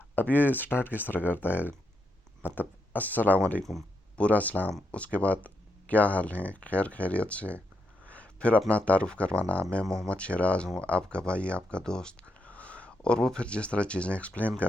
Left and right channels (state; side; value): normal; both; correlation 0.81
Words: अब ये स्टार्ट किस तरह करता है, मतलब अस्सलाम वालेकुम, पूरा सलाम, उसके बाद क्या हाल है, खैर खैरियत से, फिर अपना तारुफ़ करवाना, मैं मोहम्मद शराज़ हूँ, आपका भाई, आपका दोस्त। और वो फिर जिस तरह चीज़ें एक्सप्लेन